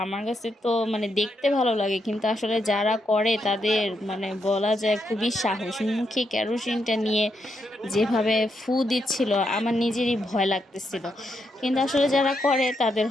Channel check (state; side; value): normal; both; correlation 0.81